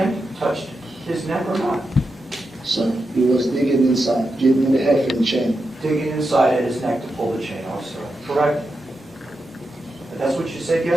touched his neck or not? Sir, he was digging inside. Give me the heffing chain. Digging inside at his neck to pull the chain off, sir, correct? But that's what you said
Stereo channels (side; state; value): both; normal; correlation 0.88